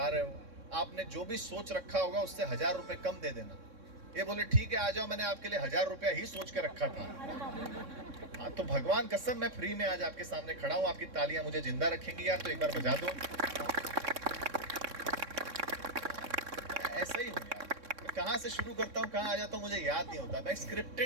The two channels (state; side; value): late; left; 3.6 ms